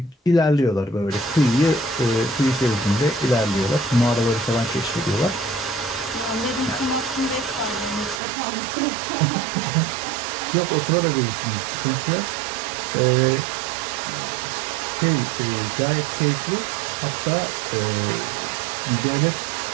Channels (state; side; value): drops out; left; at 8.2 s